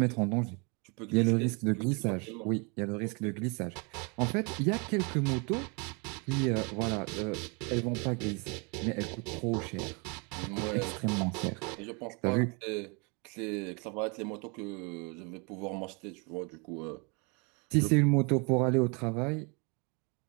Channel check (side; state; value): left; quieter; 32.4 dB